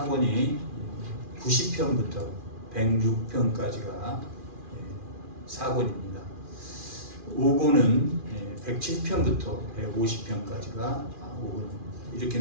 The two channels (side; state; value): left; late; 2.4 ms